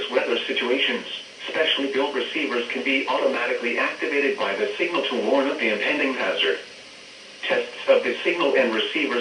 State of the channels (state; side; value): identical; both; correlation 1.00